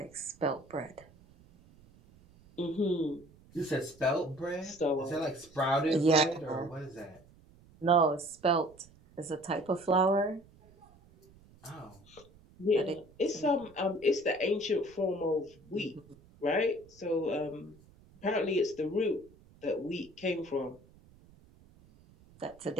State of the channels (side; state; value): right; noise; rumble, 26 dB below the sound